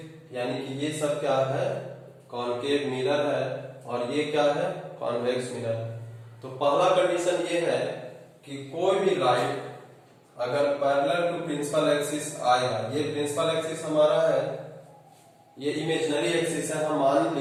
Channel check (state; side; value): identical; both; correlation 1.00